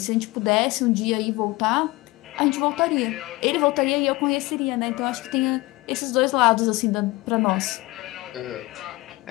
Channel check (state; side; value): quieter; right; 21.3 dB